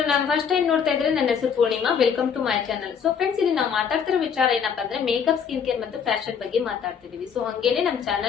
ನಾನು first time ನೋಡ್ತಾ ಇದ್ರೆ ನನ್ನ ಹೆಸರು Poornima. Welcome to my channel. So friends, ಇಲ್ಲಿ ನಾವು ಮಾತಾಡ್ತಿರೋ ವಿಚಾರ ಏನಪ್ಪಾ ಅಂದ್ರೆ ಮೇಕಪ್, ಸ್ಕಿನ್ ಕೇರ್ ಮತ್ತು ಫ್ಯಾಷನ್ ಬಗ್ಗೆ ಮಾತಾಡ್ತಿದೀವಿ. ಸೊ ಹಂಗೇನೆ ನಮ್ಮ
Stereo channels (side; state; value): right; quieter; 7.0 dB